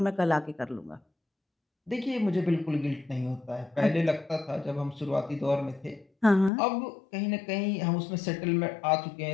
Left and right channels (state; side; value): drops out; right; at 6.5 s